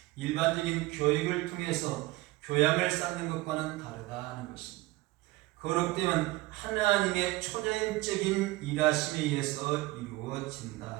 일반적인 교육을 통해서 교양을 쌓는 것과는 다르다는 것입니다. 거룩됨은 하나님의 초자연적인 일하심에 의해서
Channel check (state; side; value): quieter; left; 20.3 dB